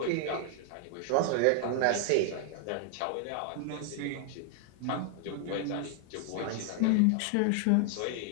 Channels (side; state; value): both; different; correlation 0.00